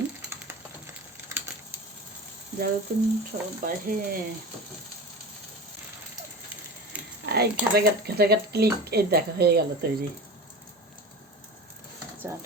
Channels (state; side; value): normal; both; correlation 0.31